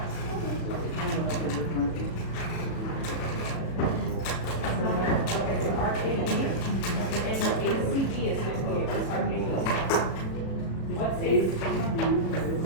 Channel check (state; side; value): late; right; 37 ms